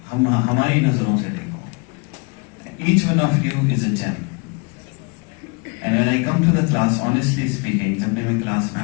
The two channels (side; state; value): right; quieter; 31.9 dB